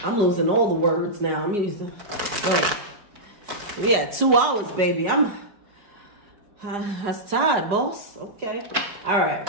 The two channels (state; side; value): late; left; 4.9 ms